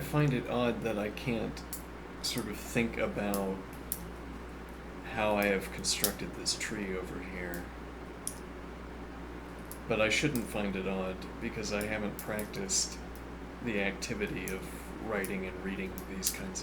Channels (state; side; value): identical; both; correlation 1.00